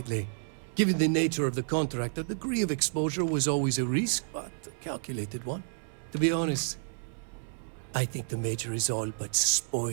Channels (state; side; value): silent; left; 57 dB below the other